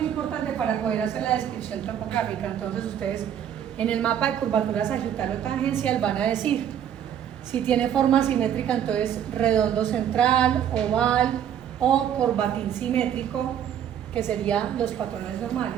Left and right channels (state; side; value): quieter; left; 9.6 dB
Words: importante para poder hacer la descripción topográfica. Entonces ustedes en el mapa de curvatura sagital o tangencial van a decir si tiene forma simétrica, entonces redondo central, oval o corbatín simétrico, que serían los patrones